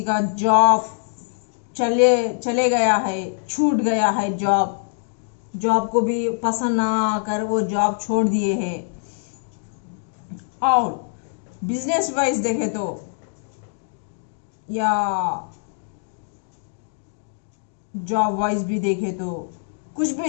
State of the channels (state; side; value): silent; right; digital silence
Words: का जॉब चले गया है, छूट गया है। जॉब को भी पसंद ना आकर वो जॉब छोड़ दिए हैं। और बिजनेस वाइज देखे तो या जॉब वाइज भी देखे तो कुछ भी